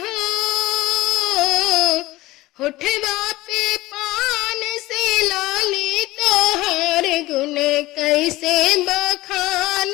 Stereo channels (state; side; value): quieter; right; 18.5 dB